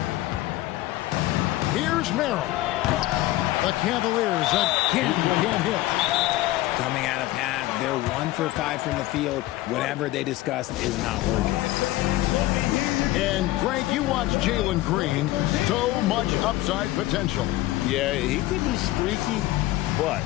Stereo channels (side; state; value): right; quieter; 16.9 dB